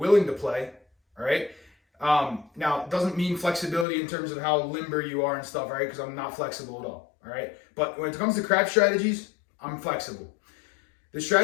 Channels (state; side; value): drops out; right; at 3.9 s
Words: to play, all right? Now, it doesn't mean flexibility in terms of how limber you are and stuff, right? Because I'm not flexible at all right? But when it comes to crap strategies, I'm flexible. The